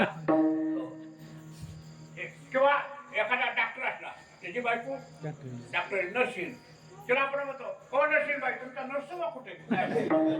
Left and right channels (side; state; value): both; identical; correlation 1.00